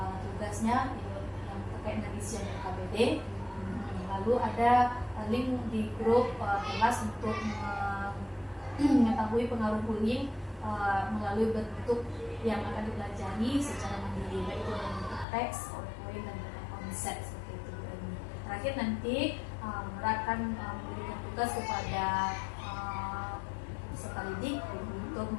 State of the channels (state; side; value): drops out; right; at 15.2 s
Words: tugasnya yang terkait dengan isian KBD. Lalu ada link di grup kelas untuk mengetahui pengaruh bullying melalui bentuk yang akan dipelajari secara mandiri, baik itu dalam bentuk teks, PowerPoint, dan konsep seperti itu. Dan terakhir nanti Nora akan memberikan tugas kepada peserta didik untuk